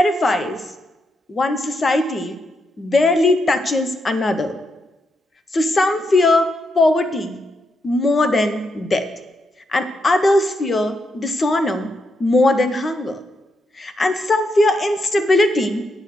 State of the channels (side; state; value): both; normal; correlation 0.82